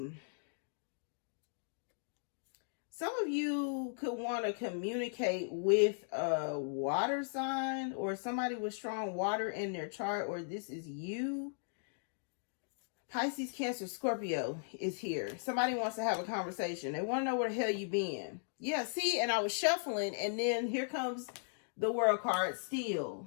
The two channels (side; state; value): right; silent; digital silence